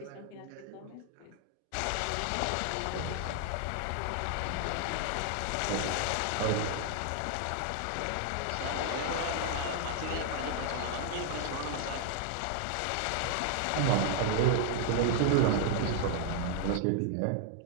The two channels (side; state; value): both; different; correlation -0.01